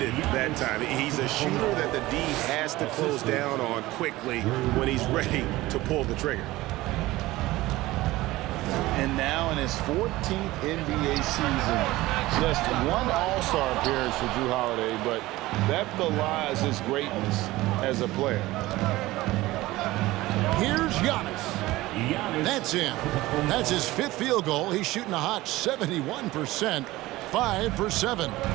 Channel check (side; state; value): left; quieter; 18.3 dB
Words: that time. He's a shooter that the D has to close down on quickly when he's ready to pull the trigger. And now in his 14th NBA season, just one All-Star appearance for Jrue Holiday, but that belies his greatness as a player. Here's Giannis. That's him. That's his fifth field goal. He's shooting a hot 71%, 5 for 7.